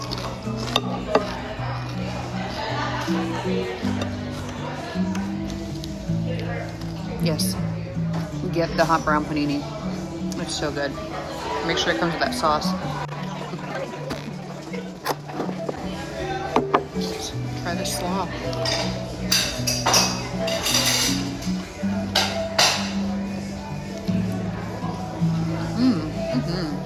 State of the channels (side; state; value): both; identical; correlation 1.00